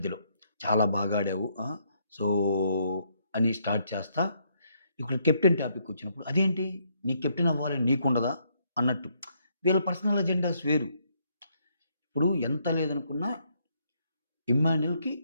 చాలా బాగా ఆడావు. సో, అని స్టార్ట్ చేస్తా. ఇక్కడ కెప్టెన్ టాపిక్ వచ్చినప్పుడు అదేంటి నీకు కెప్టెన్ అవ్వాలని నీకుండదా? అన్నట్టు. వీళ్ళ పర్సనల్ అజెండాస్ వేరు. ఇప్పుడు ఎంత లేదనుకున్నా ఇమ్మాన్యుల్‌కి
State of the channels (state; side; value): inverted; both; correlation -0.72